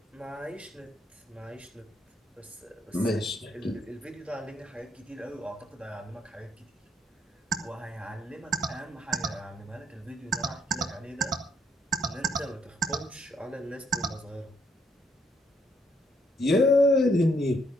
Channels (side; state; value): both; normal; correlation 0.71